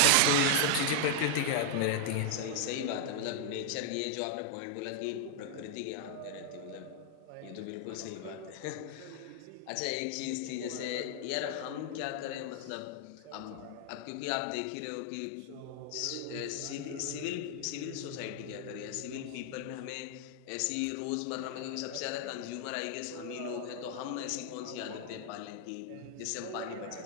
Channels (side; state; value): both; different; correlation 0.00